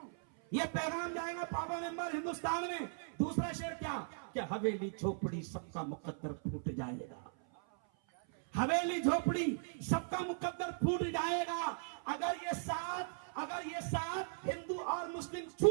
ये पैगाम जाएगा पापा मेंबर हिंदुस्तान में। दूसरा शेर क्या? कि हवेली झोपड़ी सबका मुकद्दर फूट जाएगा। हवेली झोपड़ी सबका मुकद्दर फूट जाएगा अगर ये साथ हिंदू और मुस्लिम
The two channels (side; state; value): left; silent; 52 dB below the other